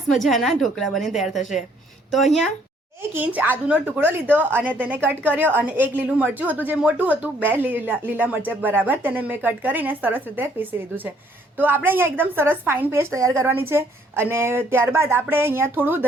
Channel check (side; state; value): both; normal; correlation 0.64